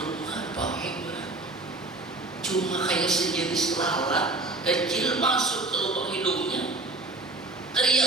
apa cuma kayak sejenis lalat kecil masuk ke lubang hidungnya,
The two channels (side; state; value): left; quieter; 3.0 dB